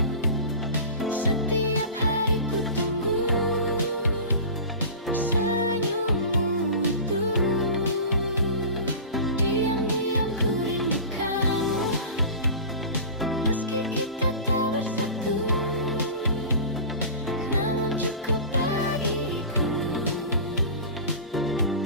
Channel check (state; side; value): inverted; both; correlation -0.34